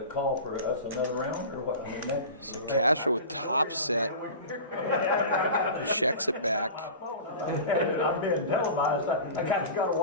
call for us another round, or what? I mean, So Castro with top set checks it back. I'm being televised. I kind of got to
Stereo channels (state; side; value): inverted; both; correlation -0.33